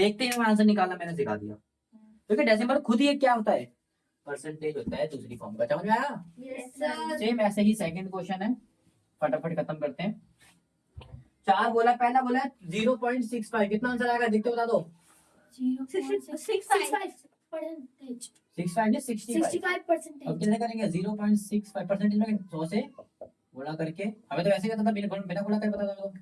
ही आंसर निकाला, मैंने सिखा दिया। क्योंकि डेसिमल खुद ही एक क्या होता है? परसेंटेज होता है दूसरी फॉर्म का। समझ में आया? Yes sir. सेम ऐसे ही सेकंड क्वेश्चन है, फटाफट खत्म करते हैं। 4 बोला, पहला बोला 0.65, कितना आंसर आएगा? देखते बता दो। 65%। 65 नहीं 65। अब कितने करेंगे? 0.65 परसेंटेज में 100 से गुणा करके, हमें तो वैसे ही पता था, बिना गुणा करे पता था तो,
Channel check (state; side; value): identical; both; correlation 1.00